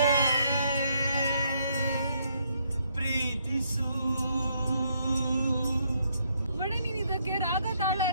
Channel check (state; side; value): inverted; both; correlation -0.72